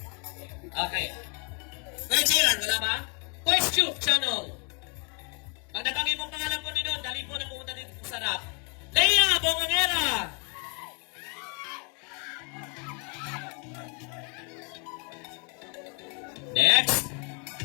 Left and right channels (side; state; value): right; quieter; 35.6 dB